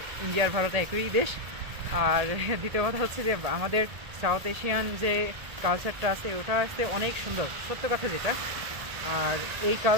ইন্ডিয়ার ভারত একই দেশ। আর দ্বিতীয় কথা হচ্ছে যে আমাদের সাউথ এশিয়ান যে কালচারটা আছে, ওটা আসতে অনেক সুন্দর, সত্য কথা যেটা। আর এই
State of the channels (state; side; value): late; left; 1.8 ms